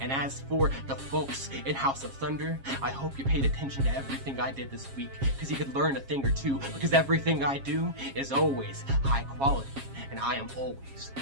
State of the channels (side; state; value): left; late; 7.4 ms